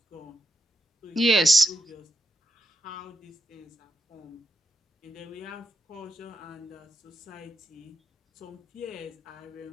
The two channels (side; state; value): both; normal; correlation 0.84